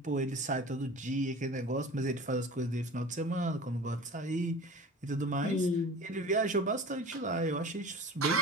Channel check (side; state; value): both; normal; correlation 0.39